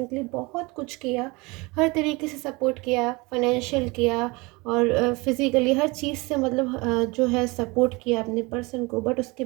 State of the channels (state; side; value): quieter; left; 25.3 dB